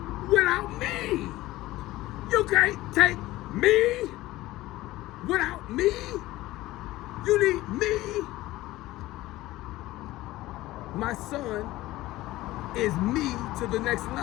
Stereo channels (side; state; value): right; quieter; 17.3 dB